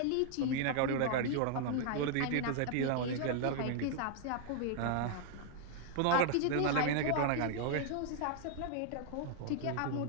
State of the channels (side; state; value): both; different; correlation -0.01